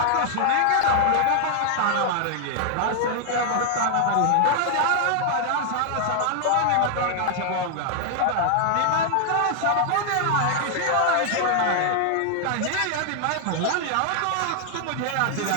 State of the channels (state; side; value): different; both; correlation 0.00